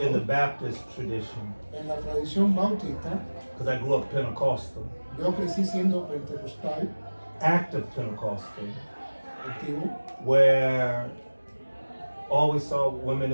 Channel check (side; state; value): both; inverted; correlation -1.00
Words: Baptist tradition, en la tradición bautista, because I grew up Pentecostal, yo crecí siendo pentecostal, active Pentecostal, activo, where always saw women